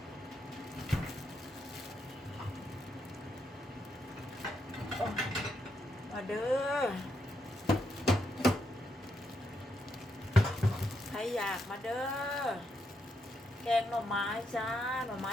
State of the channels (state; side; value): normal; both; correlation 0.80